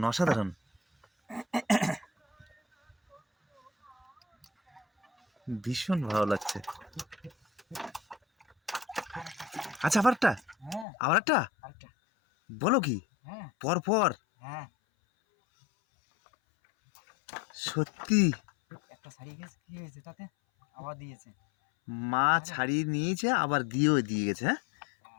অসাধারণ। ভীষণ ভালো লাগছে। আচ্ছা, আবার একটা? হ্যাঁ, আবার একটা? আরেকটা। বলো কি? হ্যাঁ, পর পর? হ্যাঁ। সত্যি একটা ছাড়িয়ে গেছে, কি হয়েছে তাতে? আবার দিয়েছে। মা ছাড়িয়ে নিয়েছে, আবার দিয়েও দিয়ে গেছে। হ্যাঁ,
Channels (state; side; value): drops out; right; at 10.9 s